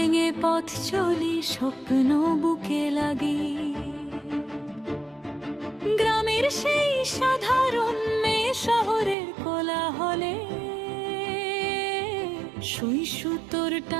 পথ চলি, স্বপ্ন বুকে লাগি। গ্রামের সেই সাধারণ মেয়ে শহরের কোলাহলে, সুই সুতোর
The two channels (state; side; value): drops out; left; at 9.2 s